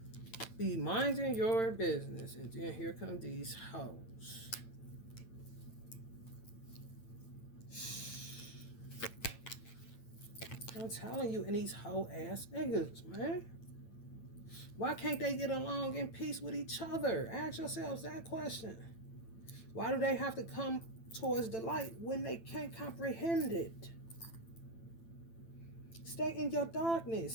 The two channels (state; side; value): late; right; 9.0 ms